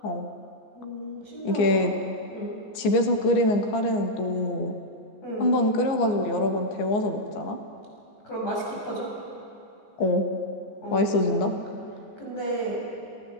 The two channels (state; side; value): late; right; 15 ms